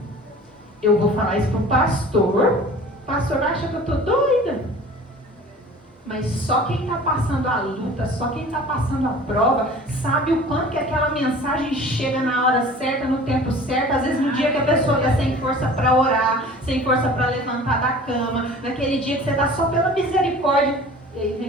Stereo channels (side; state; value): both; normal; correlation 0.44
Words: Eu vou falar isso para o pastor acha que eu estou doida. Mas só quem está passando a luta, só quem está passando a prova, sabe o quanto que aquela mensagem chega na hora certa, no tempo certo. Às vezes no dia que a pessoa está sem força para orar, sem força para levantar da cama, naquele dia que você está só pela misericórdia, e aí